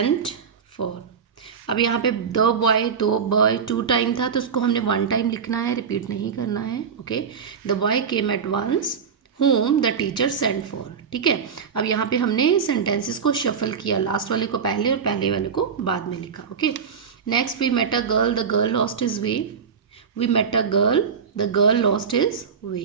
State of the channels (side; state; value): left; quieter; 6.5 dB